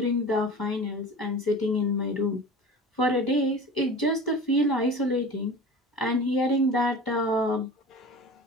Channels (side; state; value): both; normal; correlation 0.36